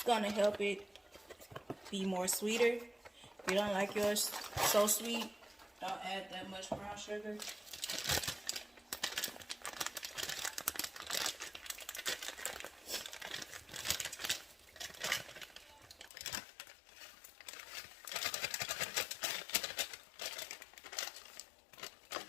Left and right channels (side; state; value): right; drops out; at 16.1 s